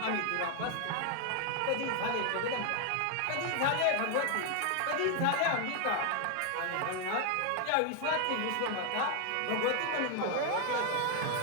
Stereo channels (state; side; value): different; both; correlation 0.01